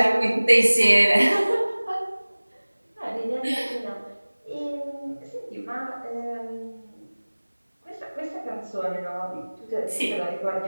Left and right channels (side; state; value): both; inverted; correlation -1.00